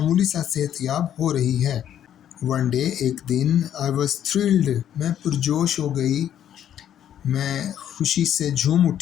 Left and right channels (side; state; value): right; quieter; 10.3 dB